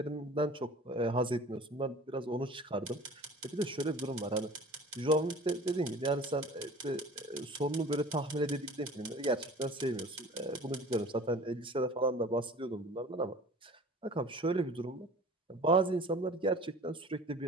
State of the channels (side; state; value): both; normal; correlation 0.43